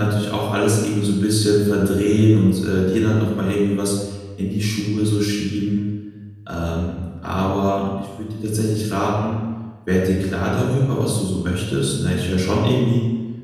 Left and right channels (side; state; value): both; identical; correlation 1.00